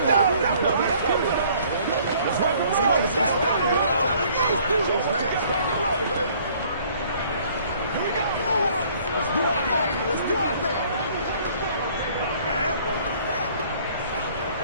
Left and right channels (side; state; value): both; inverted; correlation -0.58